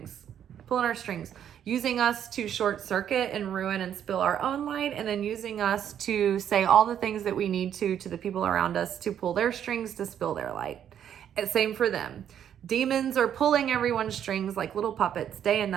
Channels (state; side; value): quieter; left; 9.5 dB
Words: using us to short circuit and ruin and spill our own light, and then using us to say all the things that we need to the people around us to pull their strings to spill their light. And same for them. Demons are pulling everyone's strings like little puppets day and